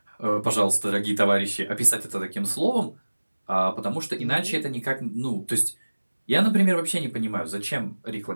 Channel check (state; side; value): inverted; both; correlation -1.00